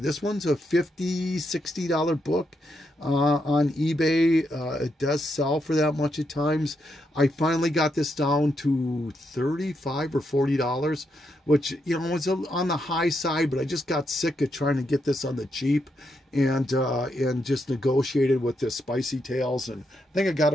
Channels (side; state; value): both; normal; correlation 0.81